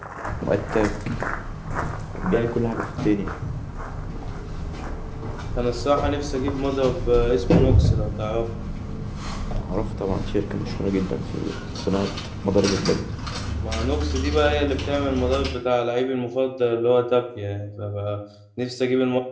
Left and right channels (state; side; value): identical; both; correlation 1.00